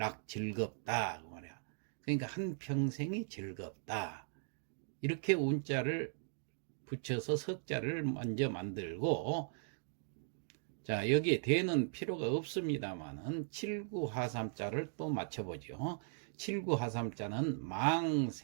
즐겁다 그 말이야. 그러니까 한 평생이 즐겁다. 이렇게 운자를 붙여서 석자를 먼저 만들고 자, 여기에 대는 필요가 없습니다만은 7구하삼자를 또 맞춰보죠. 7구하삼자는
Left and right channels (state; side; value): silent; left; digital silence